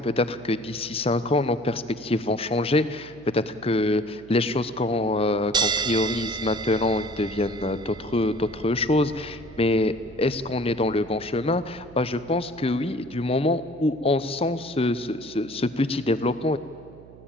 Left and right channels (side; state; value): right; noise; hum, 20 dB below the sound